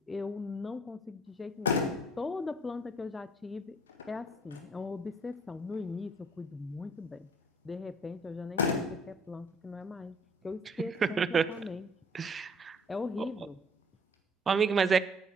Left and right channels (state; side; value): normal; both; correlation 0.57